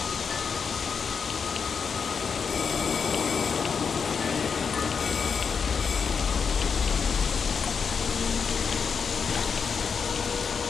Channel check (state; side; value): quieter; right; 6.0 dB